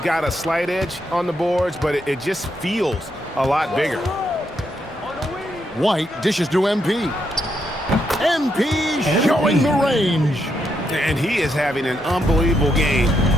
got a slight edge on the boards, but it just feels a lot bigger. White dishes to MP. MP showing the range. And he is having an unbelievable game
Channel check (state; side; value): normal; both; correlation 0.79